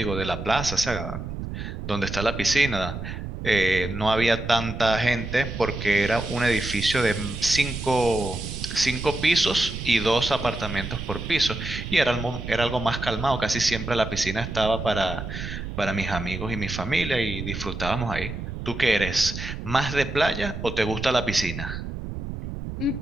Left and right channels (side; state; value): right; noise; rumble, 7 dB below the sound